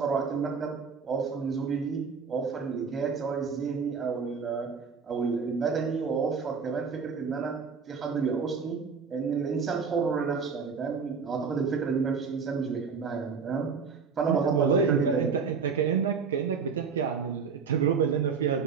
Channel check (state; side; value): quieter; left; 5.7 dB